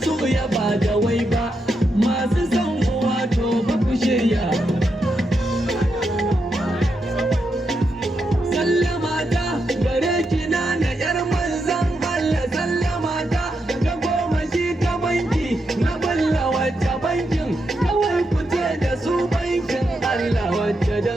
su ya ba da wai ba masu son uwa to ba ku shirya sallama ta gare ki na yar manzan Allah sallama ta ta goma shi ta banki na balla wacce bankin kawai ku ce da su bankin Allah wacce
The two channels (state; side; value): normal; both; correlation 0.84